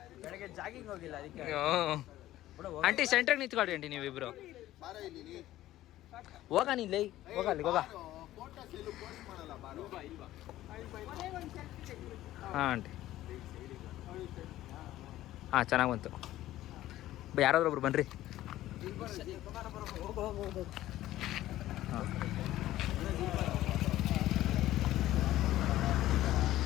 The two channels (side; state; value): right; quieter; 14.7 dB